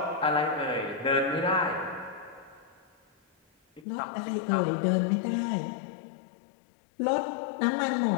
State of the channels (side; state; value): right; drops out; at 3.9 s